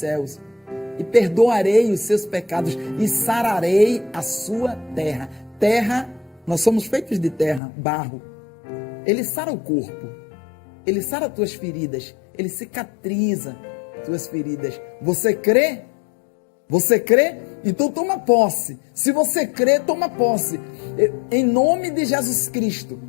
e perdoarei os seus pecados e sararei a sua terra. Terra, nós somos feitos de terra, barro. Ele sara o corpo, ele sara tuas feridas, ele cicatriza tuas feridas. Você crê? Você crê? Então toma posse. Se você crê, toma posse. Em nome de Jesus Cristo.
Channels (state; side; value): drops out; right; at 7.6 s